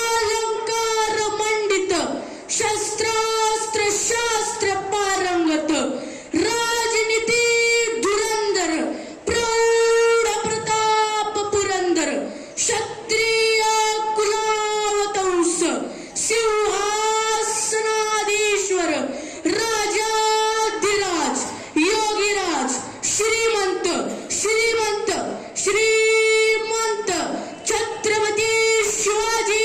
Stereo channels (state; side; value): identical; both; correlation 1.00